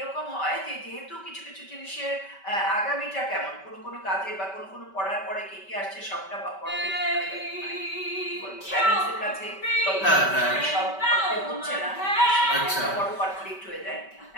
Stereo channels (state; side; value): late; right; 5.2 ms